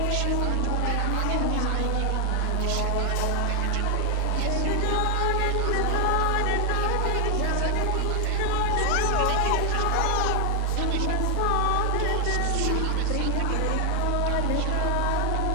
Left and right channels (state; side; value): different; both; correlation 0.00